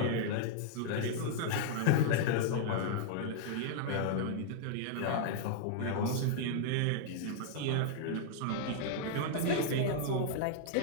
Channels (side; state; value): both; different; correlation -0.01